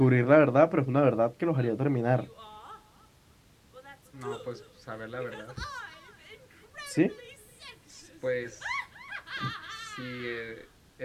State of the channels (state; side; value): identical; both; correlation 1.00